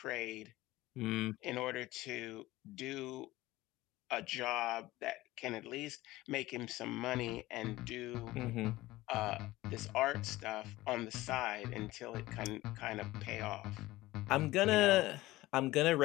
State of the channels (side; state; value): right; quieter; 18.0 dB